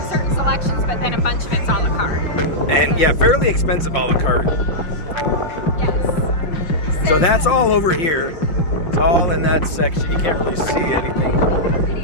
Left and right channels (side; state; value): right; late; 5.7 ms